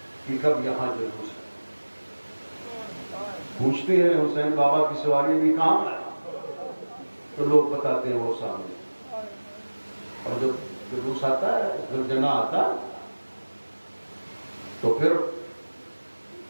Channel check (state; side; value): inverted; both; correlation -1.00